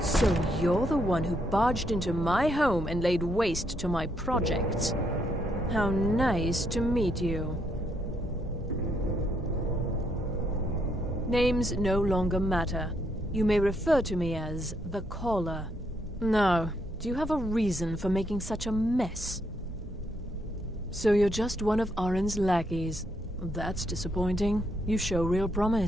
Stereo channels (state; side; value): normal; both; correlation 0.75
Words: So you're the one who barged into my home and laid waste to my projects. How nice to meet you. Names no longer matter. You may refer to me as the Caller. Now, do you have a reason for making such a mess? So you're just one of Arin's lackeys. That's disappointing. You show real